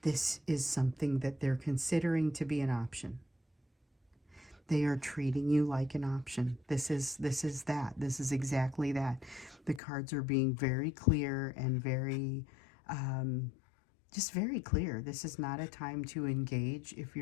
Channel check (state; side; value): drops out; right; at 9.8 s